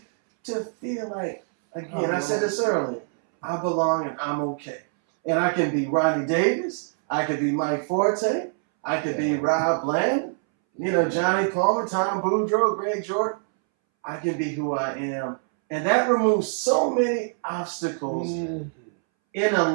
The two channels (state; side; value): silent; left; 62 dB below the other